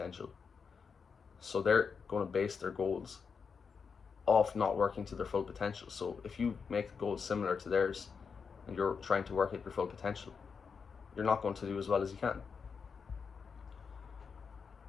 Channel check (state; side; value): quieter; right; 5.8 dB